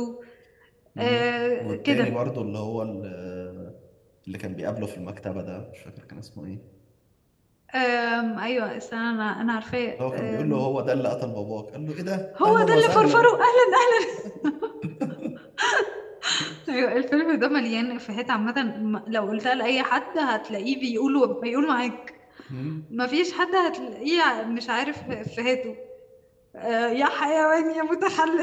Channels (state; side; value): identical; both; correlation 1.00